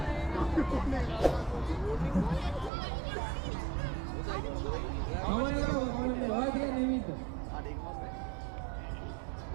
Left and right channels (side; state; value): left; drops out; at 2.7 s